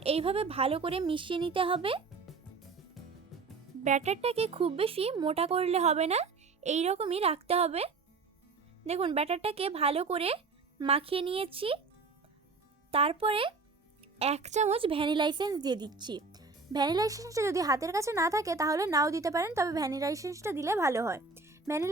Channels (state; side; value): quieter; left; 4.3 dB